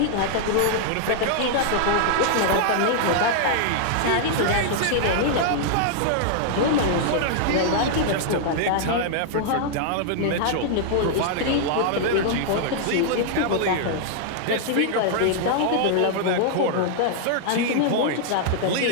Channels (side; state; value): both; different; correlation -0.01